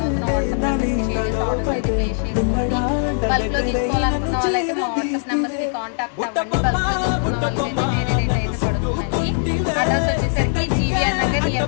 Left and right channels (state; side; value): silent; right; 63 dB below the other